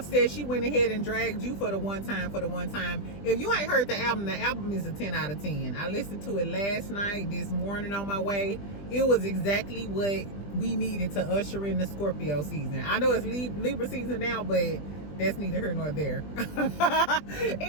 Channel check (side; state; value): right; late; 20 ms